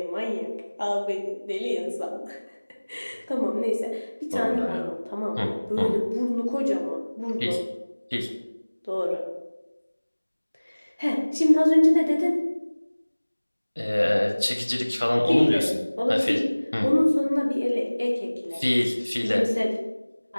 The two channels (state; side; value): inverted; both; correlation -1.00